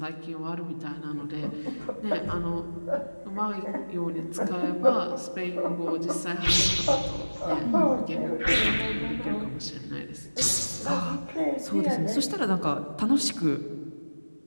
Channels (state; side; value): inverted; both; correlation -1.00